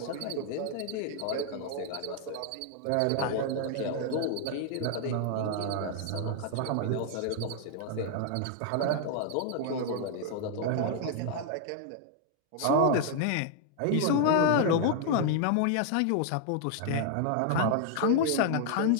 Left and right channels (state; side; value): different; both; correlation 0.00